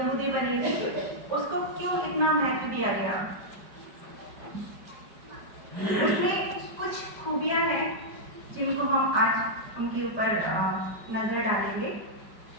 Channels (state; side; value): late; left; 5.0 ms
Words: बनी थी, उसको क्यों इतना महत्व दिया गया? उसमें कुछ खूबियां हैं जिनको हम आज उनके ऊपर नजर डालेंगे।